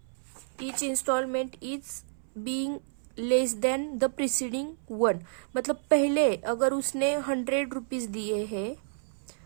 is being less than the preceding one. मतलब पहले अगर उसने 100 रुपीज दिए हैं,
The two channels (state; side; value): silent; left; 58 dB below the other